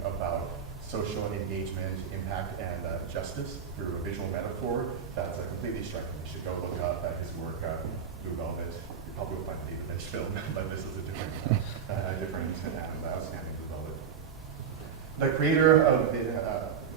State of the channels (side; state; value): left; quieter; 7.2 dB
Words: about social engagement, impact, and justice through a visual metaphor, that's completely striking. You should go look up at his work, Blue Velvet. You probably will find the David Lynch film, but this is a different and outstanding Blue Velvet. The creator of the,